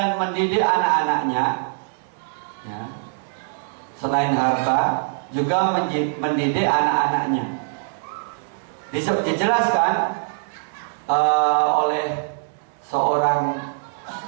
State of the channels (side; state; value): left; silent; digital silence